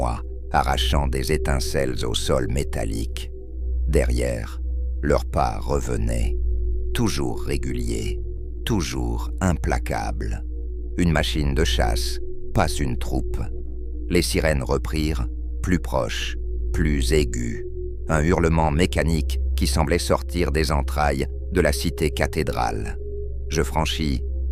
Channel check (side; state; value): both; identical; correlation 1.00